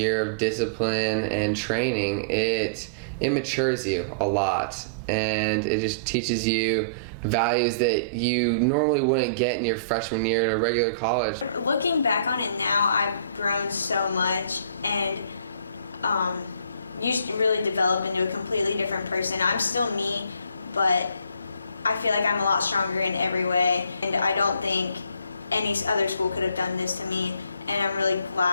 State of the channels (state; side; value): inverted; both; correlation -0.47